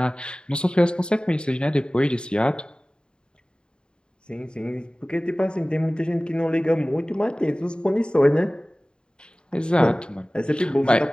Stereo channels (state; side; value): late; right; 0.050 ms